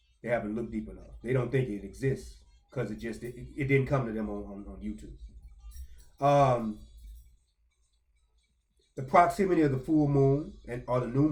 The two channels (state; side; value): identical; both; correlation 1.00